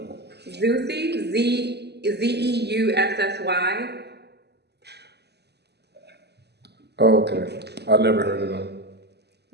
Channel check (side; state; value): left; late; 0.49 ms